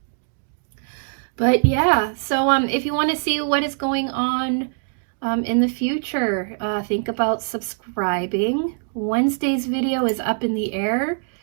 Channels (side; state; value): left; silent; 64 dB below the other